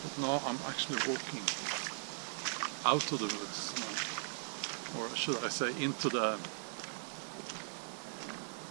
but now I'm actually walking out of the woods now, or should I say into the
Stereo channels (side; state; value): left; silent; digital silence